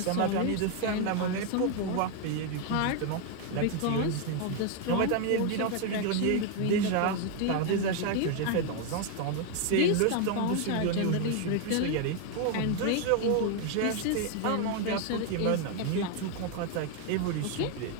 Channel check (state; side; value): different; both; correlation 0.01